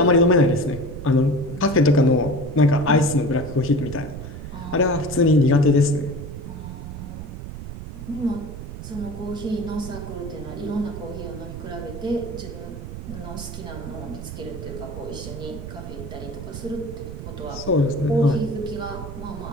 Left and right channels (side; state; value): right; noise; rumble, 10 dB below the sound